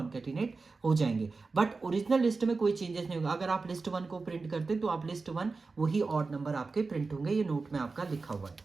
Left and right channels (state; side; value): quieter; left; 4.1 dB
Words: हो जाएंगे। बट ओरिजिनल लिस्ट में कोई चेंजेस नहीं होगा। अगर आप लिस्ट 1 को प्रिंट करते तो आप लिस्ट 1 वही ऑड नंबर आपके प्रिंट होंगे, ये नोट में आपका लिखा हुआ है।